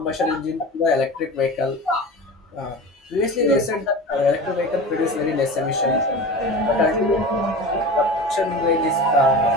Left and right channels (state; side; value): normal; both; correlation 0.32